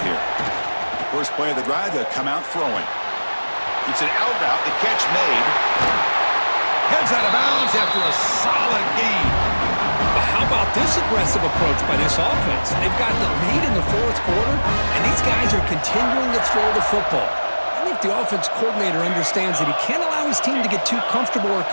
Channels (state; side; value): inverted; both; correlation -1.00